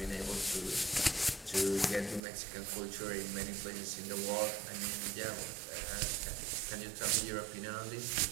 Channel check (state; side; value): drops out; left; at 2.2 s